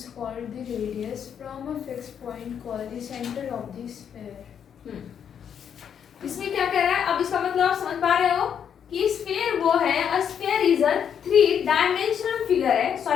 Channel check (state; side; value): quieter; right; 8.2 dB